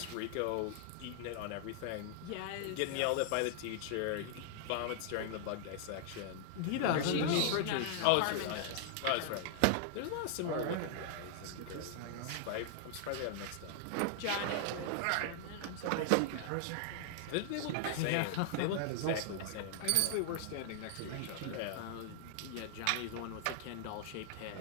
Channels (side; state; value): both; different; correlation -0.01